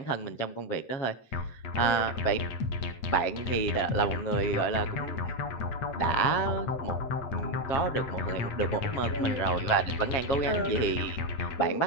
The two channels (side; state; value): right; late; 7.4 ms